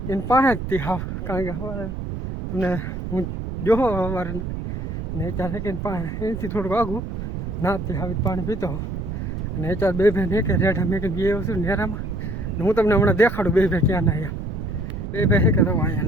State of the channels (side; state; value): right; noise; rumble, 5 dB below the sound